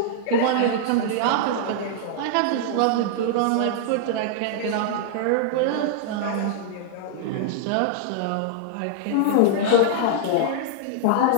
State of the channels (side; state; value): both; different; correlation -0.01